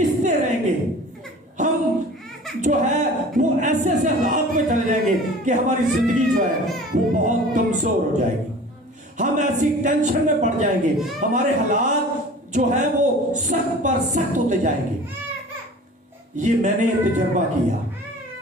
रहेंगे, हम जो है वो ऐसे ऐसे हालात में चले जाएंगे कि हमारी जिंदगी जो है वो बहुत कमजोर हो जाएगी। हम ऐसी टेंशन में पड़ जाएंगे, हमारे हालात जो है वो सख्त पर सख्त होते जाएंगे। ये मैंने तजर्बा किया,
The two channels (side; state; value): both; normal; correlation 0.42